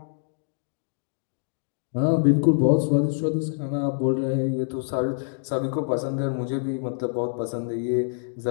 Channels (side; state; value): right; silent; digital silence